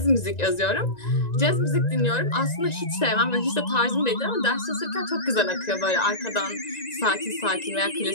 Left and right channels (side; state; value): right; late; 1.9 ms